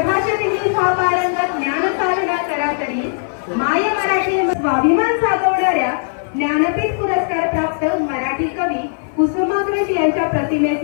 हा पारंगत ज्ञान साधना करा तरी, माय मराठी स्वाभिमान साधवणाऱ्या ज्ञानपीठ पुरस्कार प्राप्त मराठी कवी कुसुमाग्रज यांच्या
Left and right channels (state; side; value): silent; right; 55 dB below the other